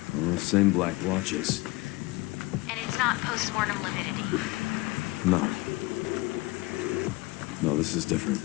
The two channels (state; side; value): quieter; right; 22.4 dB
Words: Same black watches. And it's not post-mortem lividity. No. No, this is different.